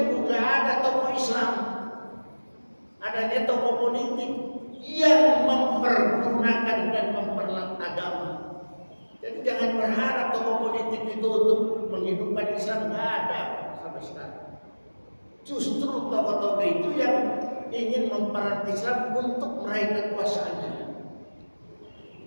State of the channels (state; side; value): inverted; both; correlation -1.00